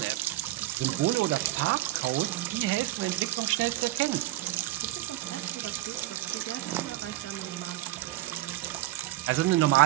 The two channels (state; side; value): quieter; left; 16.5 dB